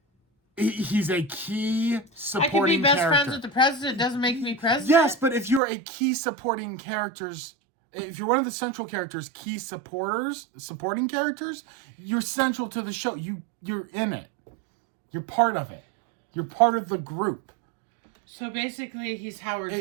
He's a key supporting character. I can be best friends with the president, doesn't make me president. Yes, but if you're a key supporting characters, if you're one of the central characters, key supporting characters, you're central to the show. You're in it. You're part of it. You're part of the group. So basically, he's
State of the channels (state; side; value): drops out; left; at 5.6 s